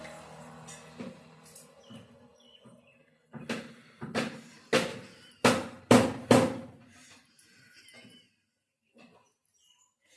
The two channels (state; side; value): identical; both; correlation 1.00